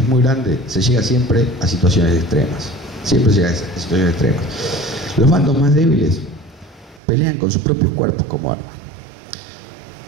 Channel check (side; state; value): left; drops out; at 7.0 s